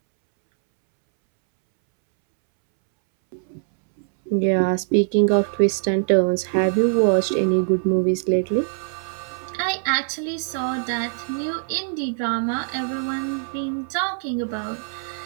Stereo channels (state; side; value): silent; left; 64 dB below the other